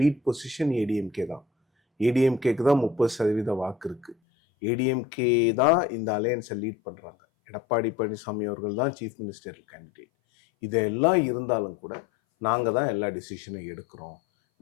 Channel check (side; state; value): right; drops out; at 4.2 s